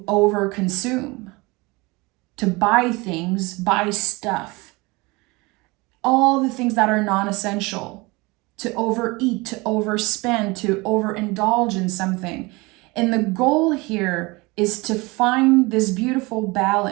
overconsume, to buy things, buy stuff, all the things that are non-essential, to overeat, to overspend, to overindulge in something. And the goal here is to find this beautiful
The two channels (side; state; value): left; quieter; 24.5 dB